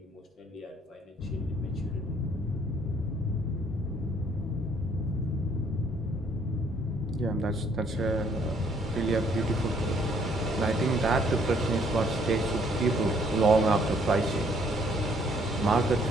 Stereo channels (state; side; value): normal; both; correlation 0.64